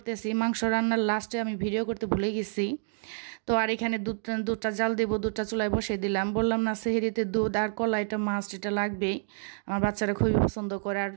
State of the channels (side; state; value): left; silent; digital silence